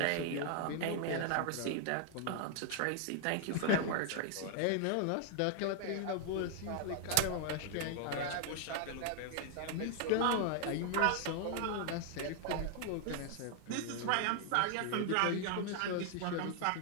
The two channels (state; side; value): different; both; correlation 0.00